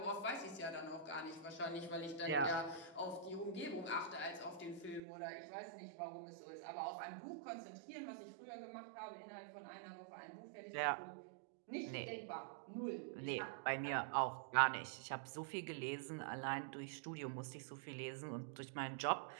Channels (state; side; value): drops out; left; at 5.0 s